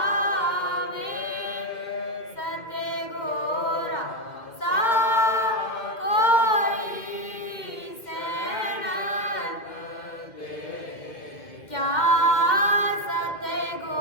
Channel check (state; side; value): late; right; 2.1 ms